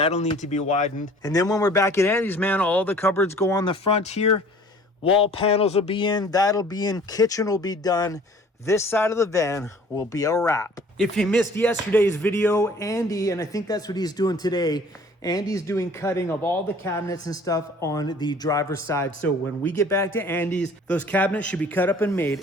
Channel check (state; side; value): normal; both; correlation 0.50